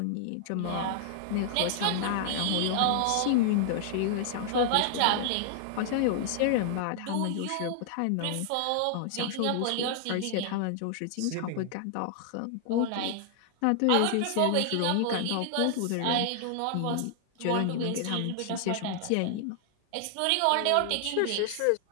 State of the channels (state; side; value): different; both; correlation -0.01